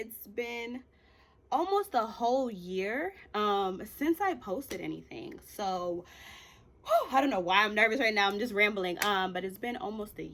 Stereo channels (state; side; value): identical; both; correlation 1.00